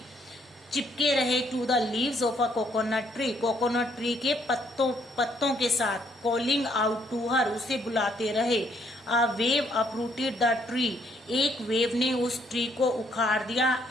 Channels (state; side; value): normal; both; correlation 0.68